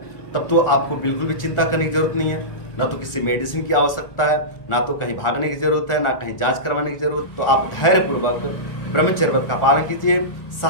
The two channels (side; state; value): right; late; 1.4 ms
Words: तब तो आपको बिल्कुल भी चिंता करने की जरूरत नहीं है। ना तो किसी मेडिसिन की आवश्यकता है, ना तो कहीं भागने की जरूरत है, ना कहीं जांच करवाने की जरूरत। तो आप धैर्यपूर्वक ब्रह्मचर्य व्रत का पालन कीजिए,